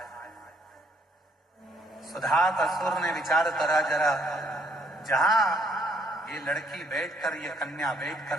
सुधात असुर ने विचार करा, जरा जहां ये लड़की बैठकर, ये कन्या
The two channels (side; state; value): both; normal; correlation 0.68